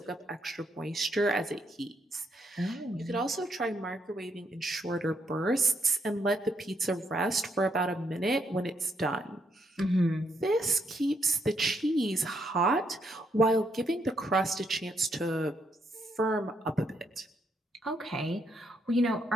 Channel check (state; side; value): normal; both; correlation 0.75